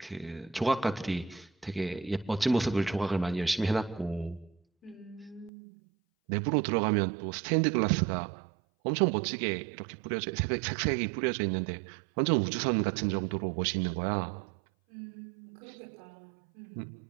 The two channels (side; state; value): left; drops out; at 5.5 s